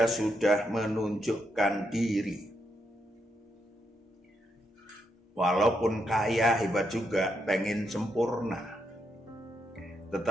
sudah menunjukkan diri. Walaupun kaya, hebat juga, pengen sempurna.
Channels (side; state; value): both; normal; correlation 0.80